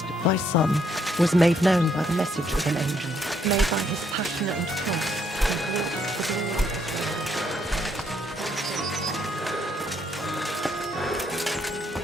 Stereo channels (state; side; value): normal; both; correlation 0.71